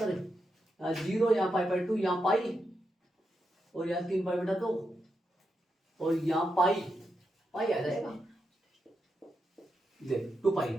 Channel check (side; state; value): both; normal; correlation 0.85